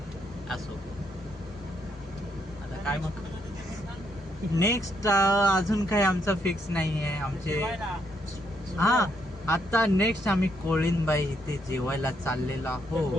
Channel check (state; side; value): normal; both; correlation 0.75